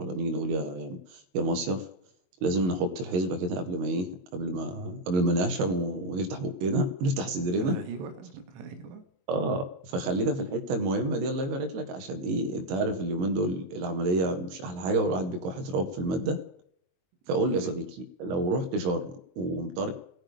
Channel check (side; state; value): left; late; 22 ms